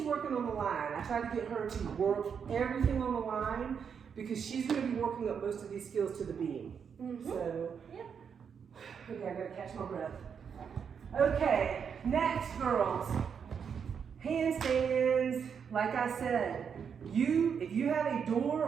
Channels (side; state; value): left; quieter; 7.0 dB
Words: working on the line. I tried to get her to work everything on the line because she's gonna be working up most of these skills to the beam. So, okay, I gotta catch my breath. Okay, next, girls. Handstands. Like I said, if you have a door